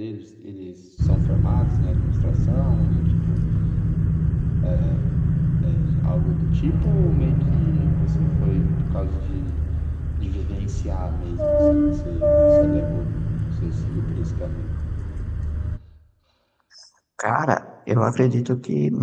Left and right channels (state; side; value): identical; both; correlation 1.00